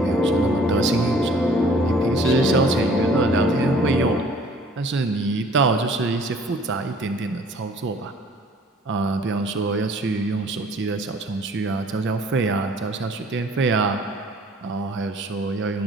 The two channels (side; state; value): both; normal; correlation 0.54